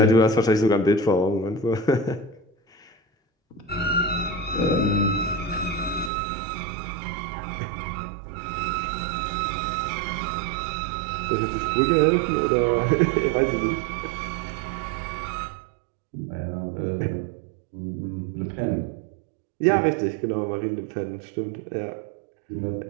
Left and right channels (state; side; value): drops out; left; at 6.1 s